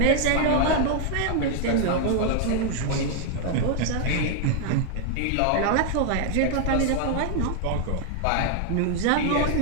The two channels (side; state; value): both; different; correlation 0.00